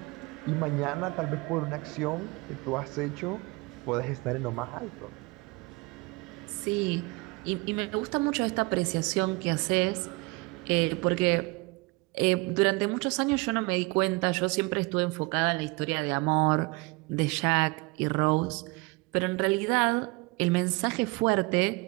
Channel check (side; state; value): left; quieter; 26.2 dB